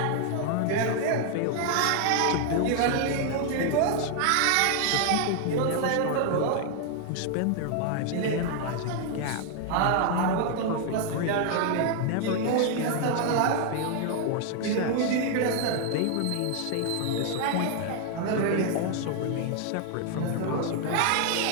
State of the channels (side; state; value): both; different; correlation 0.00